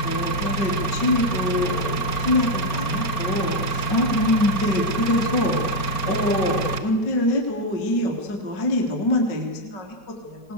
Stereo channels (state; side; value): late; right; 4.4 ms